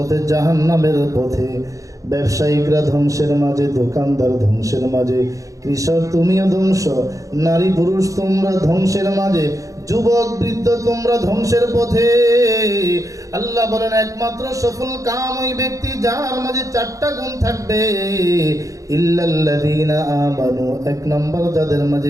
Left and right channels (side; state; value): left; late; 0.16 ms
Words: জাহান্নামের পথে। ব্যবসায়িকরা ধ্বংসের মাঝে, দোকানদার ধ্বংসের মাঝে, কৃষক তুমিও ধ্বংস, নারী পুরুষ তোমরা ধ্বংসের মাঝে, যুবক বৃদ্ধ তোমরা ধ্বংসের পথে। আল্লাহ বলেন একমাত্র সফল কাম ওই ব্যক্তি যার মাঝে চারটা গুণ থাকবে। ইল্লাল্লাযীনা আমানু, এক নম্বর যাদের